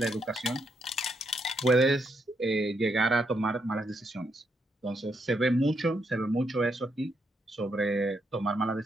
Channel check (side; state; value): both; normal; correlation 0.78